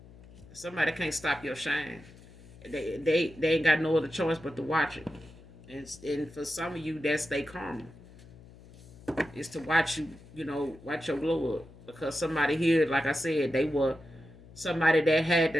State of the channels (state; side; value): noise; left; hum, 21 dB below the sound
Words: Somebody can't stop your shine. They ain't got no other choice but to watch it. And for some of you, that's their karma. Is to watch you, watch your glow up. Because somebody here, like I said, they were somebody that had